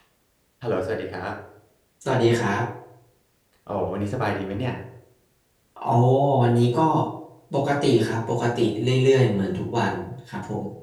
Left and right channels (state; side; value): identical; both; correlation 1.00